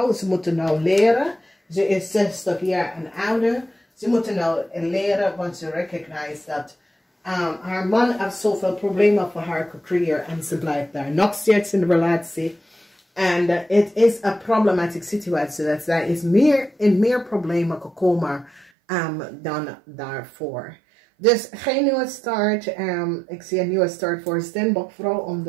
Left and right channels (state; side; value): drops out; left; at 18.7 s